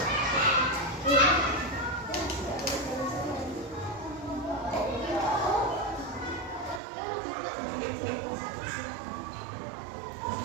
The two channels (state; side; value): drops out; left; at 6.8 s